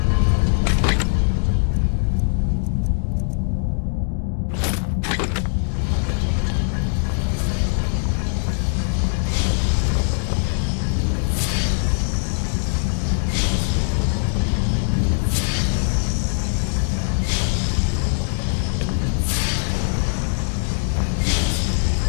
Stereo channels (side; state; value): right; silent; digital silence